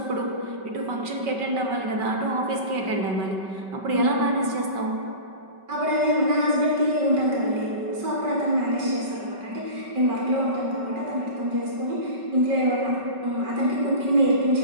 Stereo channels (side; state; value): left; late; 5.3 ms